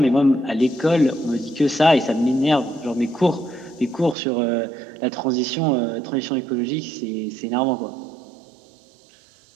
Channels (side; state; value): left; drops out; at 4.2 s